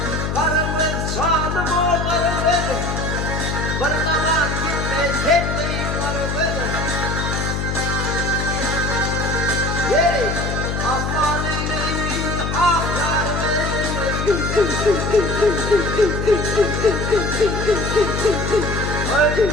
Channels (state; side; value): noise; left; hum, 2 dB below the sound